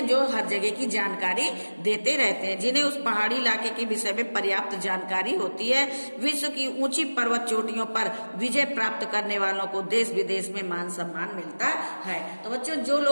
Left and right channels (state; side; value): inverted; both; correlation -1.00